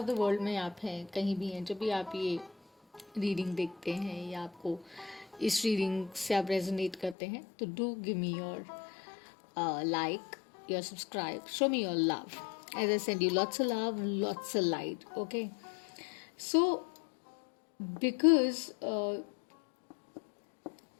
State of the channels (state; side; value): drops out; right; at 7.2 s